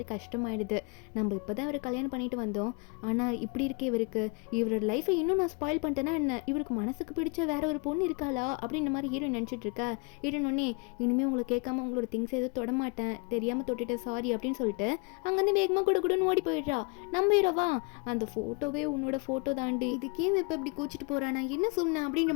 கஷ்டமாயிடுது. நம்ம இப்போ தான் இவரை கல்யாணம் பண்ணிட்டு வந்தோம், ஆனால் இப்படி இருக்கே இவருக்கு, இவரோட லைஃபை இன்னும் நான் ஸ்பாயில் பண்ணிட்டேன்னா என்ன, இவருக்கு மனசுக்கு பிடிச்ச வேற ஒரு பொண்ணு இருக்காளா அப்படின்ற மாதிரி ஹீரோயின் நினச்சிட்டு இருக்கா. ஹீரோயின் ஒன்னே இனிமேல் உங்களை கேட்காம உங்களோட திங்ஸ் எதுவும் தொடமாட்டேன், தெரியாமல் தொட்டுட்டேன் சாரி அப்படின்னு சொல்லிட்டு அங்கேருந்து வேகமாக குடுன்னு ஓடி போயிடுறா. நம்ம ஹீரோவா அந்த ஃபோட்டோவே உன்னோட ஃபோட்டோ தாண்டி, இதுக்கே இப்போ இப்படி கோச்சிட்டு போறா, நான் என்ன சொன்னேன் அப்படின்ற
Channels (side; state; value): right; quieter; 32.1 dB